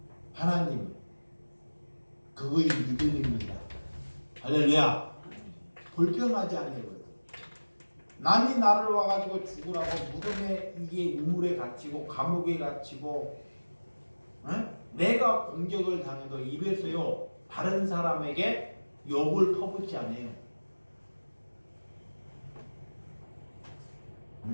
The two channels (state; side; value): inverted; both; correlation -1.00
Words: 하나님, 그거의 믿음입니다. 할렐루야. 불평하지 않아요. 남이 나를 와가지고 죽으라고 무덤에 이게 우물에 갇히고 감옥에 갇히고, 내가 공격을 당해도 입에서요 다른 사람에게 욕을 퍼붓지 않아요.